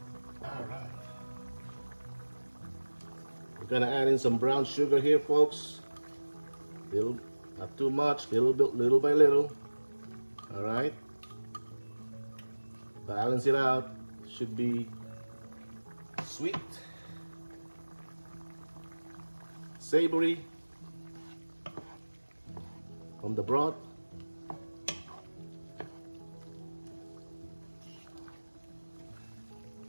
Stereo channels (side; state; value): both; inverted; correlation -1.00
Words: Gonna add in some brown sugar here, folks. Little, not too much, little by little. All right. Balance it out. Should be sweet, savory from the broth.